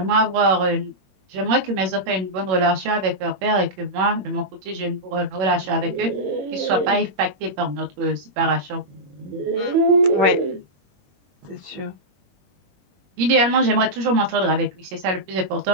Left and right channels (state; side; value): late; left; 21 ms